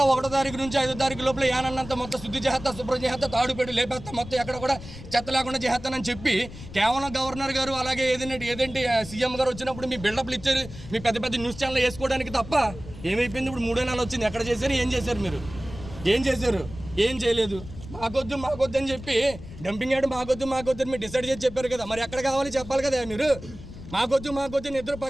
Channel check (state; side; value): noise; left; rumble, 14 dB below the sound